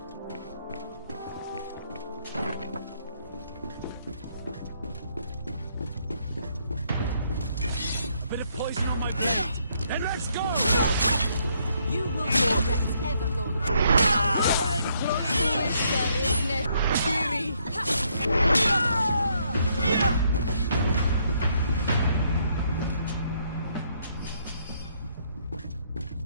Bit of poison on my blade. Then let's go! You will regret ever going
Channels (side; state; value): both; inverted; correlation -0.71